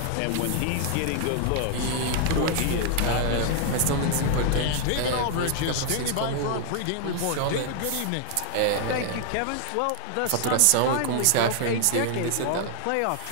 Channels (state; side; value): different; both; correlation 0.00